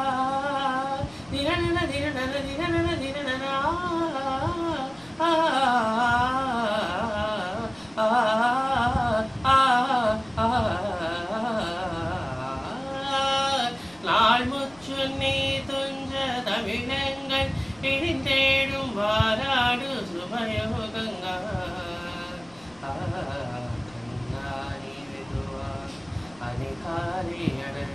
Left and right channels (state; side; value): noise; left; rumble, 27 dB below the sound